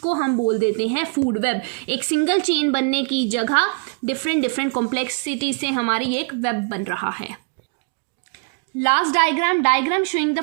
हम बोल देते हैं फूड वेब। एक सिंगल चेन बनने की जगह डिफरेंट डिफरेंट कॉम्प्लेक्सिटी से हमारी एक वेब बन रहा है। Last diagram showing the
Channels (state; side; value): quieter; left; 36.7 dB